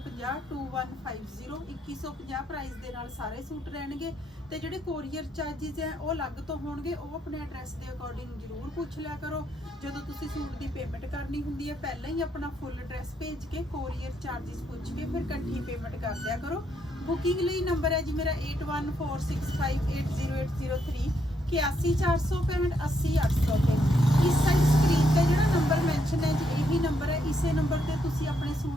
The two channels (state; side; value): normal; both; correlation 0.75